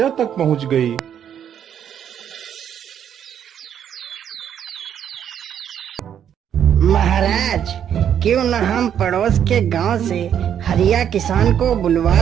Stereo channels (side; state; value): left; quieter; 9.2 dB